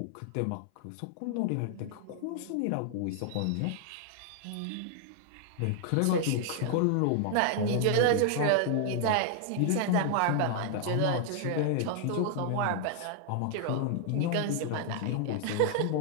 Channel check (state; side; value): different; both; correlation 0.00